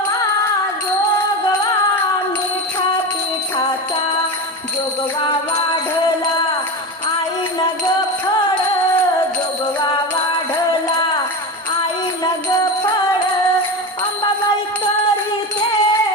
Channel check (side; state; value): both; normal; correlation 0.22